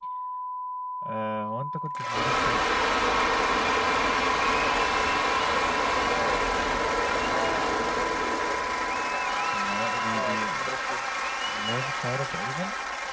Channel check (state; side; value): identical; both; correlation 1.00